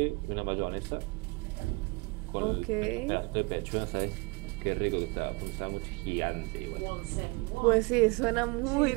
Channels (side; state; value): left; quieter; 26.9 dB